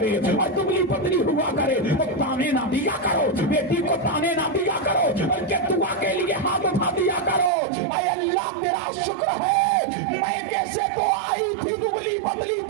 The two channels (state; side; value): drops out; left; at 7.5 s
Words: اور دبلی پتلی ہوا کرے تو تانے نہ دیا کرو، بیٹی کو تانے نہ دیا کرو، بلکہ دعا کے لیے ہاتھ اٹھا دیا کرو، اے اللہ تیرا شکر ہے میں کیسے تو آئی تھی دبلی پتلی